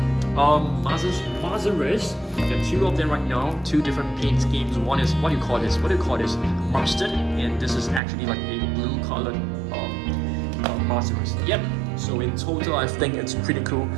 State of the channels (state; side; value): drops out; left; at 8.0 s